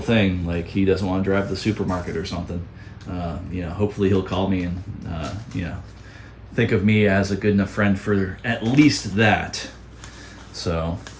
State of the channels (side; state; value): both; identical; correlation 1.00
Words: thing, like he doesn't want to drive to the supermarket or something, hopefully he'll call me and think of me as a good enough friend for at least that. So,